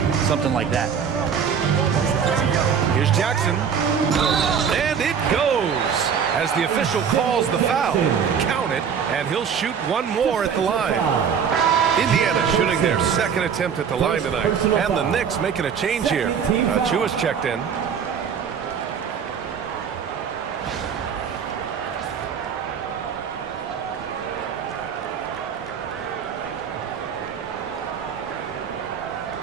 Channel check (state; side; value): quieter; left; 7.2 dB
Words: something like that. Here's Jackson. And it goes. As the official calls the foul, count it, and he'll shoot one more at the line. Indiana shooting their 2nd attempt at the line tonight. And the Knicks making a change here. Chua checked in.